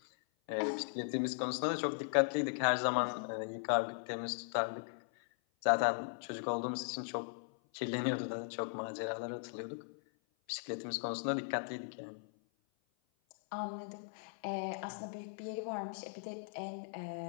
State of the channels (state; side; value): silent; right; 52 dB below the other